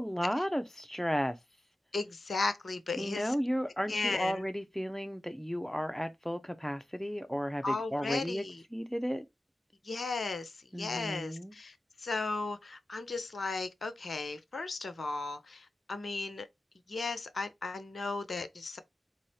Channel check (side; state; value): both; normal; correlation 0.94